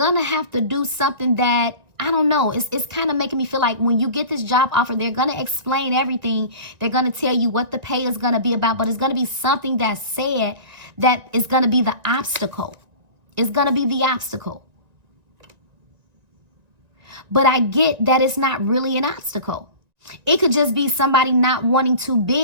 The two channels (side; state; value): left; late; 1.9 ms